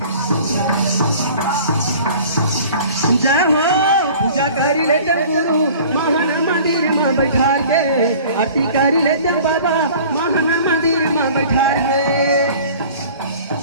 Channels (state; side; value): inverted; both; correlation -0.46